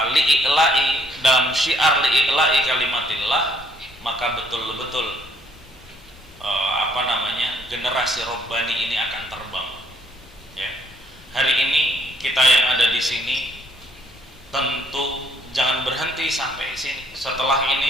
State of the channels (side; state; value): both; normal; correlation 0.67